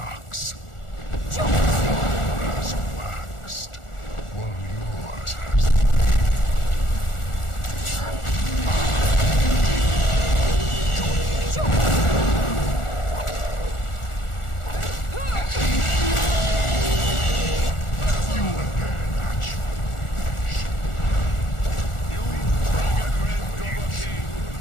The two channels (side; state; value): right; late; 1.4 ms